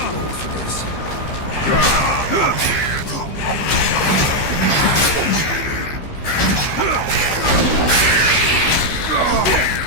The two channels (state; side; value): late; right; 15 ms